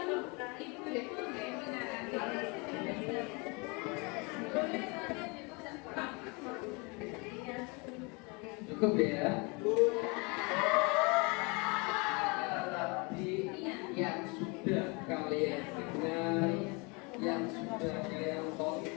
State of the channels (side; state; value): right; quieter; 29.9 dB